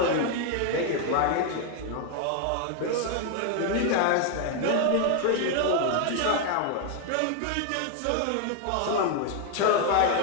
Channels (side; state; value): both; different; correlation 0.00